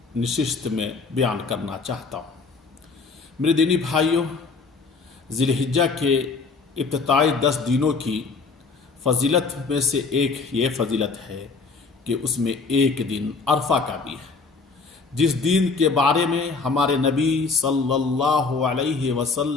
نشست میں بیان کرنا چاہتا ہوں۔ میرے دینی بھائیوں، ذی الحجہ کے ابتدائی 10 دنوں کی فضیلت میں سے ایک یہ فضیلت ہے کہ اس میں ایک دن عرفہ کا بھی ہے، جس دن کے بارے میں ہمارے نبی صلی اللہ علیہ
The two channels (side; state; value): right; quieter; 4.4 dB